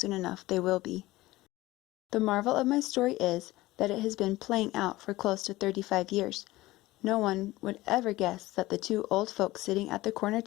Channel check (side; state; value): right; quieter; 18.3 dB